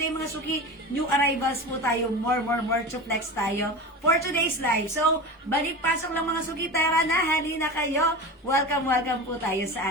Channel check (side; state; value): both; normal; correlation 0.29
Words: mga suki, new arrivals po tayo. More to flex tayo for today's live. So, balik-pasok lang mga suki. Tara na, halina kayo. Welcome po tayo